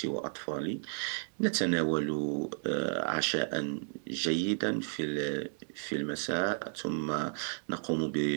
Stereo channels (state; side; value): silent; left; digital silence